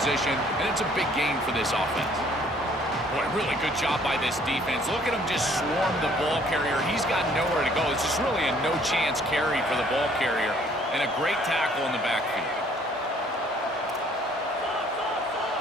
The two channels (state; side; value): normal; both; correlation 0.60